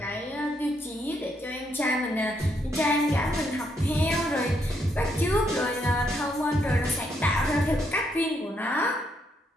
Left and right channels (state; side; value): normal; both; correlation 0.76